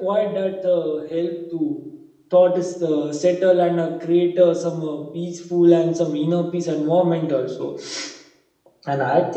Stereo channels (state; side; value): identical; both; correlation 1.00